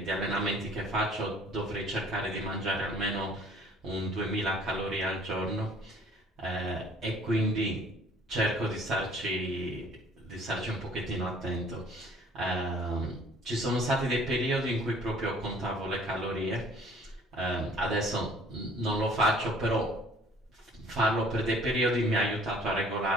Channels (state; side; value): normal; both; correlation 0.55